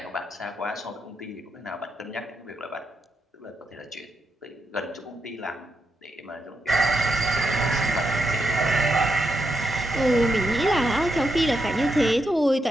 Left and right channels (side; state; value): both; normal; correlation 0.83